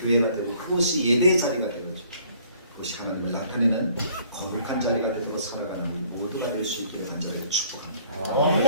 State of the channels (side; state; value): both; inverted; correlation -0.59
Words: 되고 그곳이 예배의 자리가 되고 그것이 하나님을 나타내는 거룩한 자리가 되도록 살아가는 우리 모두가 될 수 있기를 간절히